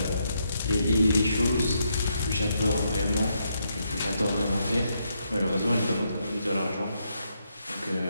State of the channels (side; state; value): both; inverted; correlation -0.78